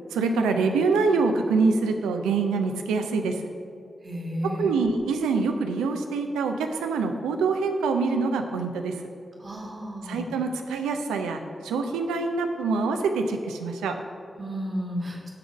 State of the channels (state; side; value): quieter; left; 3.7 dB